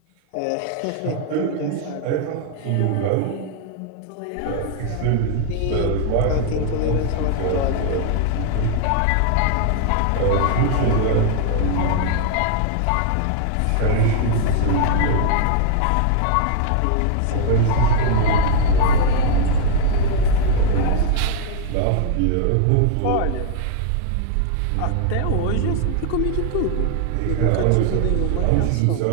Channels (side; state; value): both; different; correlation -0.01